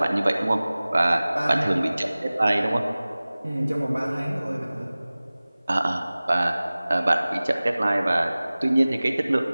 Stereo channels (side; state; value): both; inverted; correlation -0.98